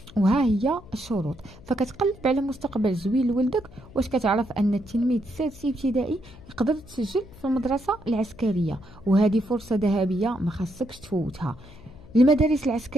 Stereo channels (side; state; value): left; noise; hum, 21 dB below the sound